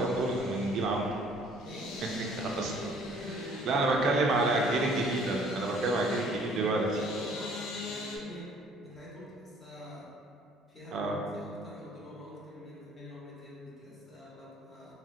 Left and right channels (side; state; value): both; normal; correlation 0.57